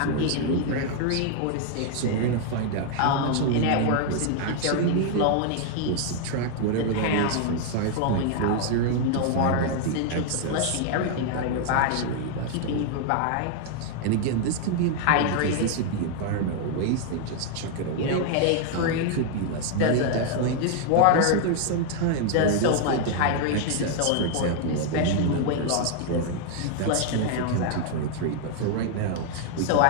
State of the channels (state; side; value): different; both; correlation 0.00